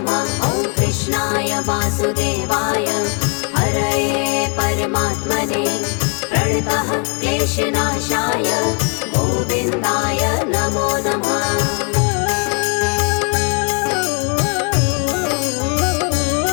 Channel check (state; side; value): quieter; right; 38.0 dB